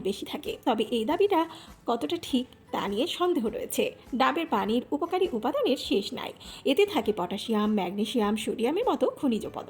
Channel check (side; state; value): both; identical; correlation 1.00